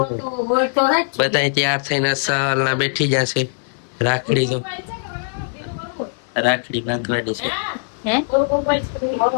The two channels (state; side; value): silent; right; digital silence